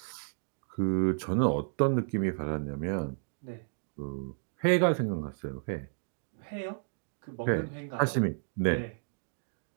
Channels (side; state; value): left; silent; digital silence